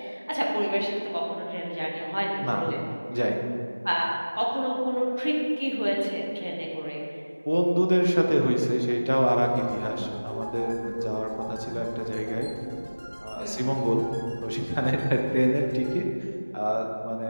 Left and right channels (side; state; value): both; inverted; correlation -1.00